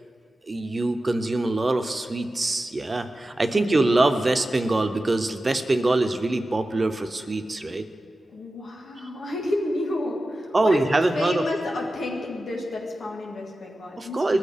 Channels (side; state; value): both; normal; correlation 0.94